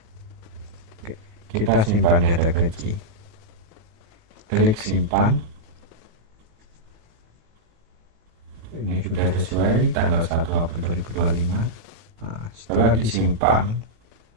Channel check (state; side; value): late; left; 18 ms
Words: Kita simpan data gaji, klik simpan. Ini sudah sesuai tanggal 1 April 2025. Nah, setelah disimpan,